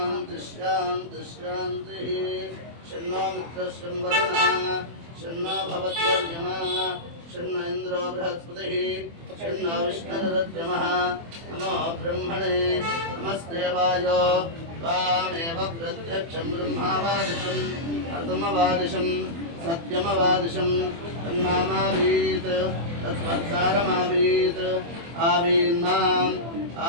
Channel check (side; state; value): left; late; 24 ms